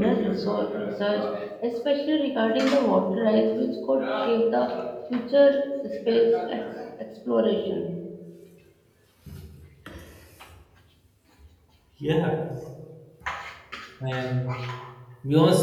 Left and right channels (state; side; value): identical; both; correlation 1.00